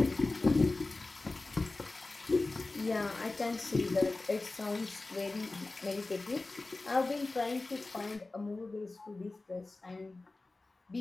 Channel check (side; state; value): right; quieter; 3.3 dB